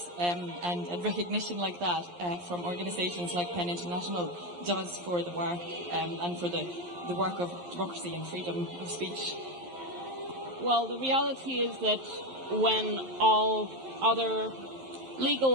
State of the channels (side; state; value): left; late; 11 ms